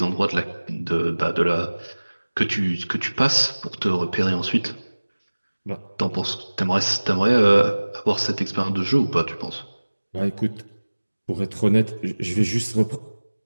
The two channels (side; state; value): both; inverted; correlation -1.00